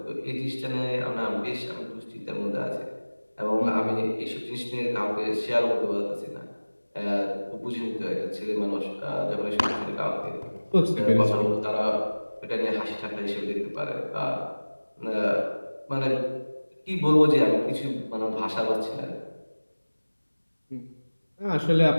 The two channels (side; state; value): both; inverted; correlation -1.00